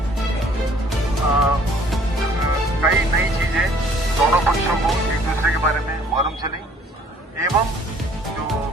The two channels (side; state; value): both; normal; correlation 0.57